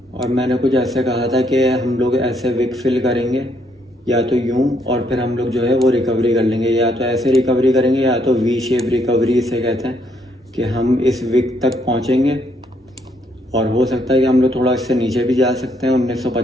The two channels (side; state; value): both; normal; correlation 0.72